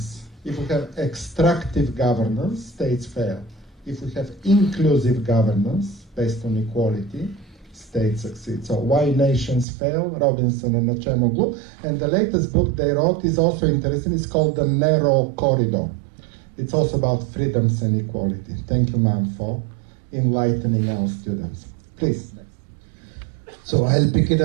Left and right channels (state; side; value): drops out; left; at 9.7 s